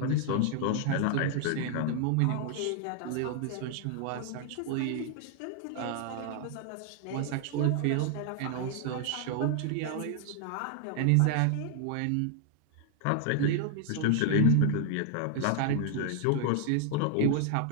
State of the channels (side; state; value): both; different; correlation 0.00